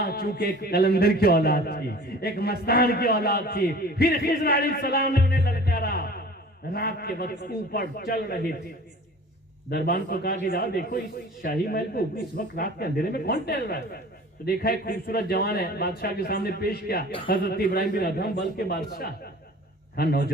چونکہ ایک قلندر کی اولاد تھی, ایک مستان کی اولاد تھی, پھر خضر علیہ السلام نے انہیں للکارا. رات کے وقت اوپر چل رہے تھے, دربان کو کہا کہ جاؤ دیکھو اس شاہی محل کو اس وقت رات کے اندھیرے میں کون ٹہل رہا ہے. تو دیکھا ایک خوبصورت جوان ہے, بادشاہ کے سامنے پیش کیا, حضرت ابراہیم بن ادہم بلخ کے بادشاہ. ہاں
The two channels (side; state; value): both; normal; correlation 0.44